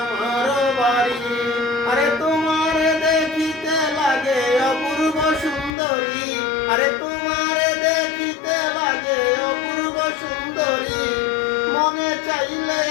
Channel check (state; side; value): drops out; right; at 5.7 s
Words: আমার বাড়ি। আরে তোমার দেখিতে লাগে অপূর্ব সুন্দরী, আরে তোমার দেখিতে লাগে অপূর্ব সুন্দরী। মনে চাইলে